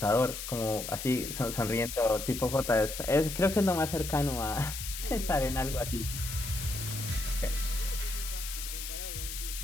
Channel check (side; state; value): left; noise; hiss, 7 dB below the sound